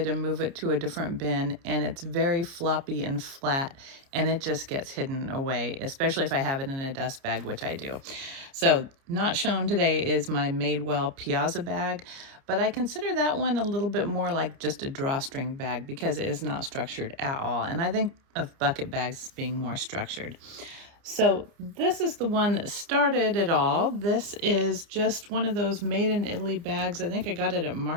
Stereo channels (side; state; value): left; late; 30 ms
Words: to move it to a different bin, and it's very floppy and flat, and it just gets hidden away, especially if I have it in a dust bag, which I do. So not shown today is my Madewell Piazza bag, but I consider that one a little bit more like just a drawstring bag because it is not structured at all. And I think of bucket bags as being more structured. So this is the one that started it all. This is just one of those made in Italy bags. I think I got it at